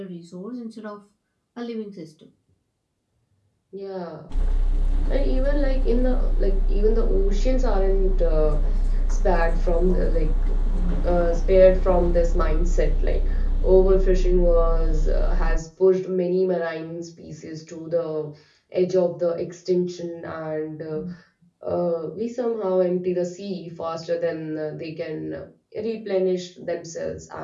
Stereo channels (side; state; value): both; identical; correlation 1.00